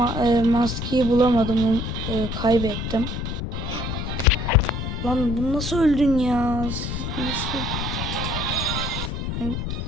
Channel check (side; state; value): left; noise; rumble, 4 dB below the sound